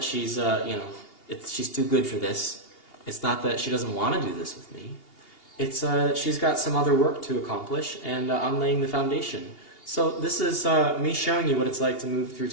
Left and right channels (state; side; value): late; right; 2.8 ms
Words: she's, she's too good for this. It's not that she doesn't want to do this with me. It's that she's got some other work to accomplish, and I'm laying the foundation. So this is me showing you what it's like to move through